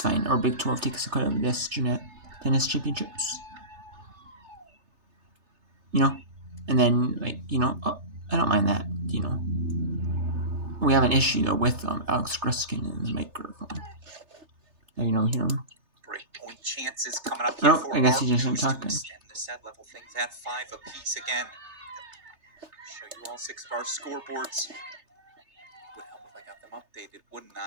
fine. Or Big 12 takes a cut of this tennis championships. And then I don't mind that. We have an issue though with Alex Gruskin and the microphone. Hear him. Great point chances coming up here for I guess he just isn't to talking. extend the set, level things at 5 apiece again. Show you all 6 of our scoreboards. Would help if I got them updated, wouldn't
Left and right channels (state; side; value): late; left; 3.3 ms